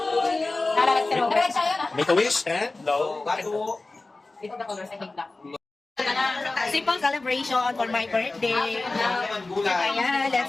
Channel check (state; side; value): quieter; right; 3.3 dB